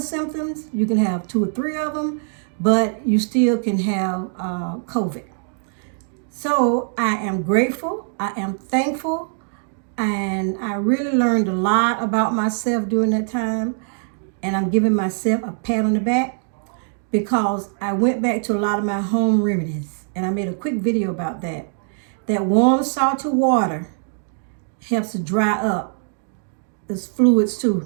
symptoms. You can have 2 or 3 of them, but you still can have COVID. So I am grateful. I am thankful. And I really learned a lot about myself during that time. And I'm giving myself a pat on the back because I went back to a lot of my home remedies. And I made a quick video about that. That warm, salty water helps to dry up. There's fluids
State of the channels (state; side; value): silent; left; digital silence